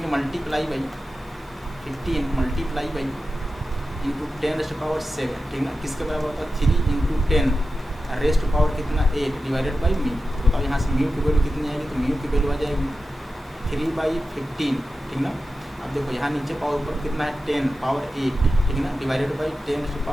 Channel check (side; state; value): both; normal; correlation 0.92